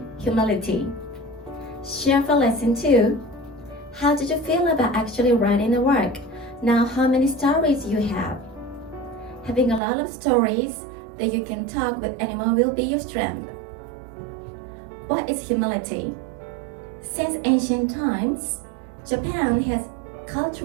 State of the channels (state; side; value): drops out; left; at 9.8 s